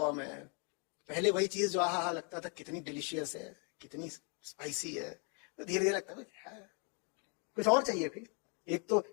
है। पहले वही चीज जो आहा लगता था कितनी डिलीशियस है, कितनी स्पाइसी है, तो धीरे धीरे लगता है कुछ और चाहिए। फिर एक तो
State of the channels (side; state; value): right; quieter; 36.8 dB